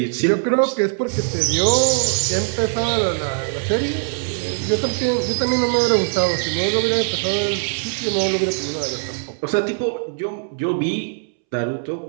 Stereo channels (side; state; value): left; silent; 65 dB below the other